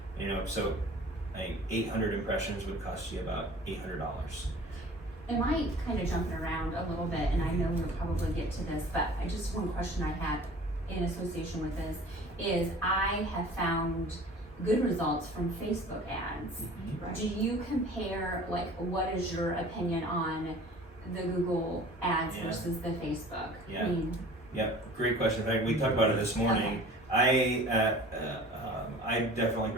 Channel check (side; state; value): both; normal; correlation 0.45